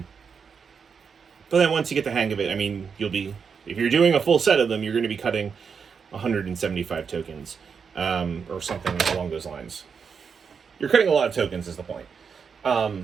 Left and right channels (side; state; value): left; quieter; 6.1 dB